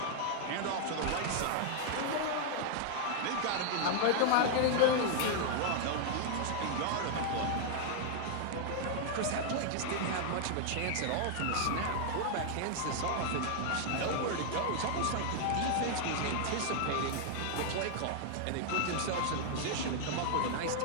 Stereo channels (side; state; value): both; different; correlation -0.01